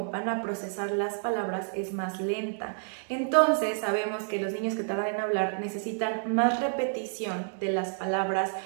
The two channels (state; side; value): silent; left; digital silence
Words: van a procesar las palabras es más lenta. Entonces sabemos que los niños que tardan en hablar necesitan más repetición de las palabras